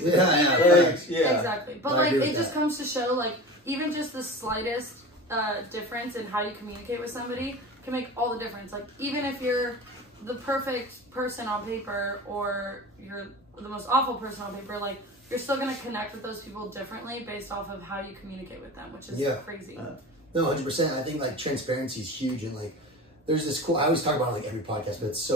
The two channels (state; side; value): normal; both; correlation 0.33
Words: to do. Exactly. But like, it just comes to show, like, even just the slightest difference in how you communicate with somebody can make all the difference. Like, even if you're the perfect person on paper or you're the most awful person on paper, like you're still going to connect with those people differently based off of how you communicate with them, which is crazy. No, 100%. I think like transparency is huge, and like there's this cool, I always talk about it, like every podcast, but it's